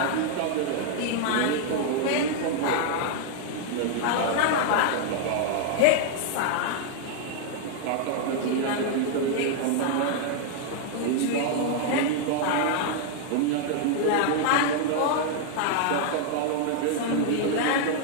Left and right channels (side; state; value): both; different; correlation 0.00